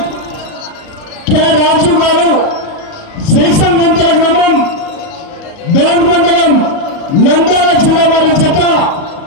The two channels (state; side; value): late; right; 37 ms